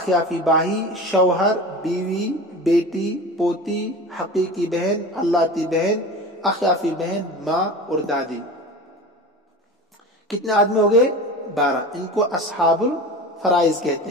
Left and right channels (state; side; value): normal; both; correlation 0.33